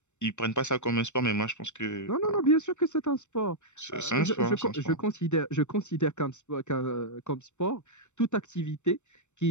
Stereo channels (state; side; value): late; right; 0.84 ms